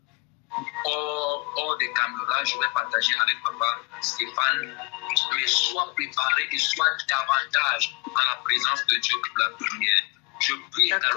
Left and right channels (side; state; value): right; quieter; 29.9 dB